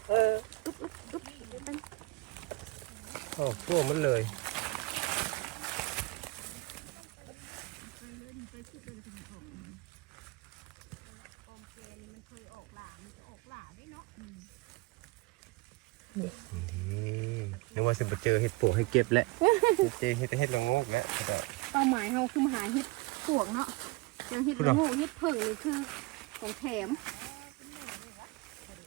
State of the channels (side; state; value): left; quieter; 24.0 dB